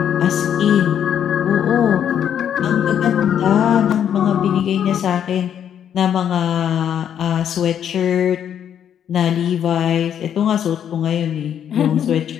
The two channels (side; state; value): right; quieter; 9.2 dB